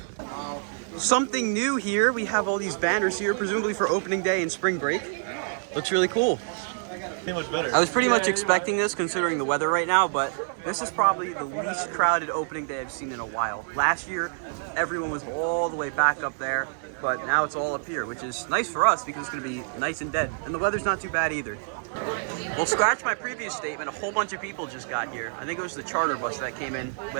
Something new here. We have all these banners here, presumably for opening day and spring break. Looks really cool. Much better. I was pretty much expecting this considering the weather right now, but this is probably the least crowded opening day I've seen in a while. Last year, everyone was all the way back up there, but now it's all up here, which is nice for us because it's gonna be nice and dead. And the weather's not too bad either. Well, scratch my previous statement, a whole bunch of people just got here. I think it was the charter bus that came in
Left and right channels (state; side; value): silent; left; digital silence